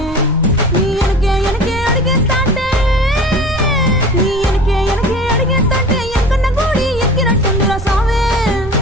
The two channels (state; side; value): noise; right; rumble, 10 dB below the sound